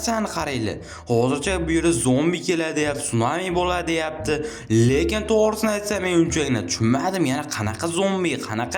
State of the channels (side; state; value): both; identical; correlation 1.00